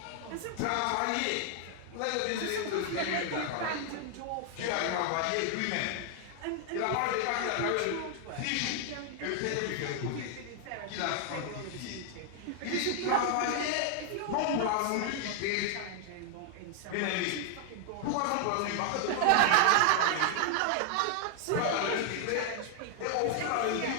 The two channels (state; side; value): different; both; correlation 0.00